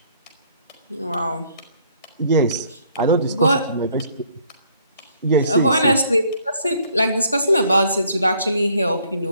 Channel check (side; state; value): both; inverted; correlation -0.63